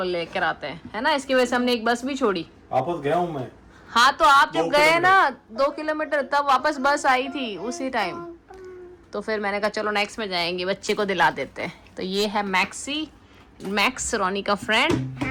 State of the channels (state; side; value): identical; both; correlation 1.00